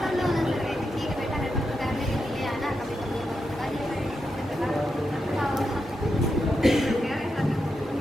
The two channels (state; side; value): normal; both; correlation 0.86